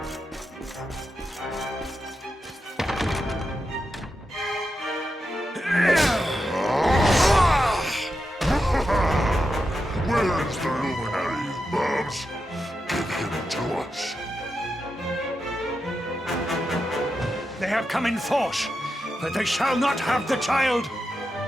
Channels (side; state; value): both; normal; correlation 0.88